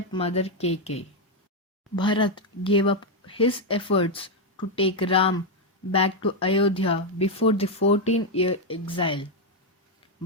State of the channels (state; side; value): normal; both; correlation 0.02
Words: Kaikeyi. Bharat gave up his efforts to take Ram back to Ayodhya before the 14-year exile.